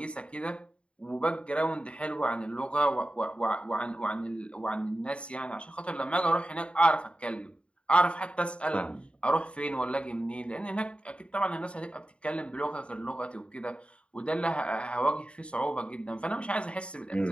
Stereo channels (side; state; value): right; late; 0.058 ms